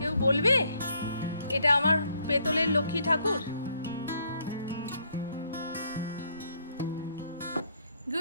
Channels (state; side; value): inverted; both; correlation -0.69